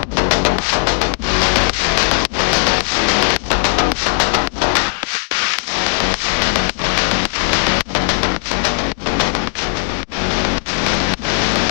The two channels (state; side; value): silent; right; digital silence